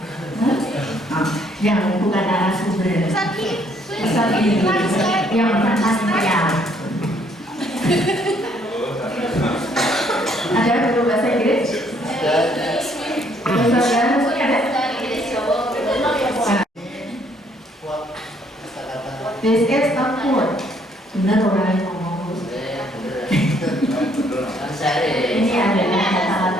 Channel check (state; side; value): normal; both; correlation 0.66